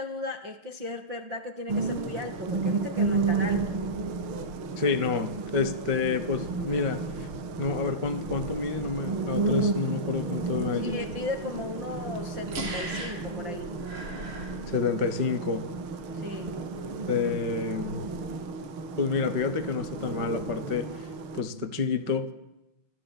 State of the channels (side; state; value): left; late; 5.3 ms